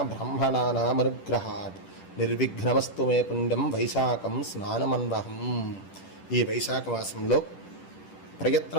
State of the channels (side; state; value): right; late; 10 ms